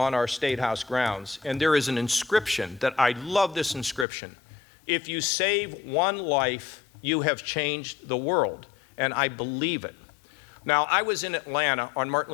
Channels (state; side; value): drops out; right; at 4.0 s